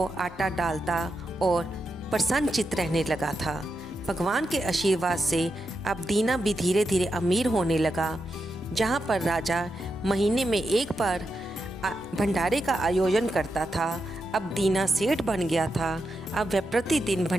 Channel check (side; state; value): both; normal; correlation 0.86